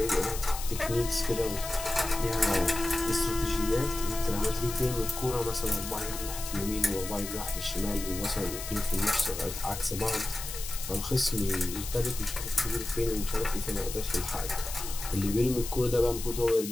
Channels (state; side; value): noise; left; hiss, 8 dB below the sound